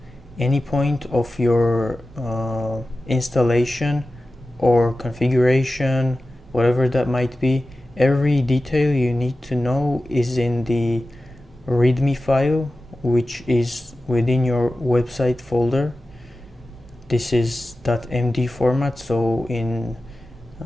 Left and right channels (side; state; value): both; normal; correlation 0.94